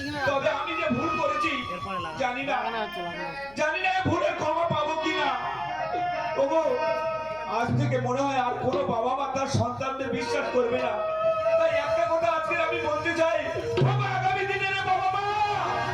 তবে আমি যে ভুল করেছি জানি না এই ভুলের ক্ষমা পাবো কিনা। ওগো আজ থেকে মনে হয় আর কোনো বাবা মা তার সন্তানদের বিশ্বাস করবে না। তাই একটা কথা আজকে আমি বলতে চাই, বাবা আগামী দিনের বাবা মা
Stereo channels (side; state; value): left; noise; hum, 26 dB below the sound